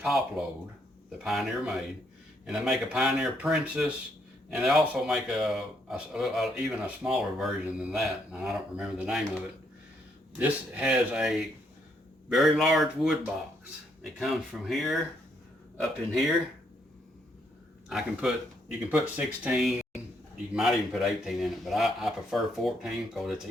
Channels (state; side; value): normal; both; correlation 0.73